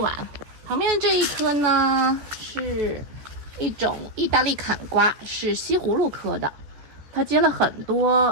旁边的这一棵呢，是一种意大利坎瓜，是西葫芦科的，它结了很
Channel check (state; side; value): late; left; 14 ms